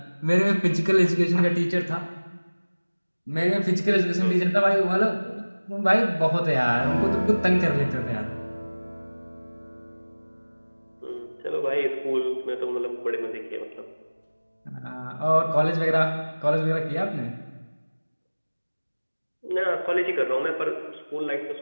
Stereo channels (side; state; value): both; inverted; correlation -1.00